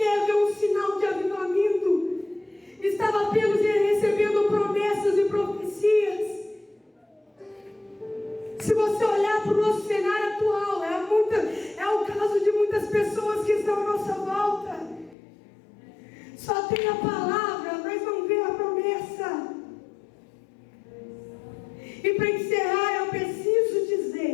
ver um sinal de avivamento. Estava apenas recebendo promessas e profecias. Se você olhar para o nosso cenário atual, é o caso de muitas pessoas que estão à nossa volta. Só tem a palavra, mas não vê a promessa. E para encerrar, eu preciso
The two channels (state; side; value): drops out; right; at 15.2 s